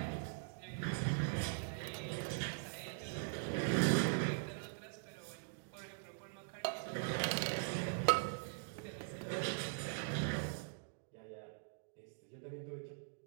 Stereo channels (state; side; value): silent; left; digital silence